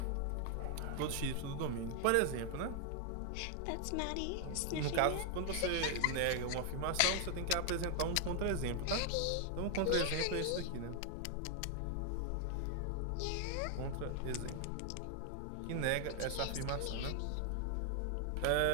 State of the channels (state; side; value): different; both; correlation 0.00